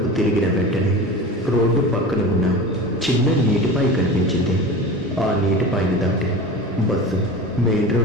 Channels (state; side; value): normal; both; correlation 0.32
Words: తిరిగిన వెంటనే రోడ్డు పక్కన ఉన్న చిన్న నీటిపాయ కనిపించింది. ఆ నీటిపాయను దాటి బస్సు మెయిన్